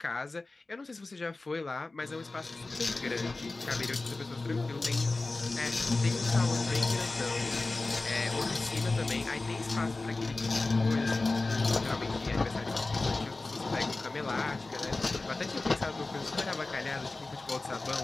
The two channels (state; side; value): quieter; right; 3.3 dB